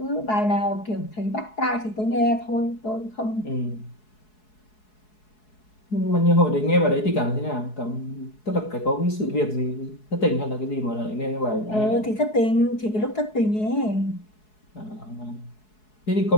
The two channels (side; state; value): right; late; 4.7 ms